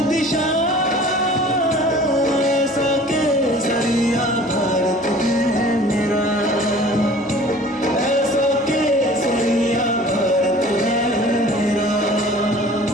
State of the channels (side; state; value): both; normal; correlation 0.47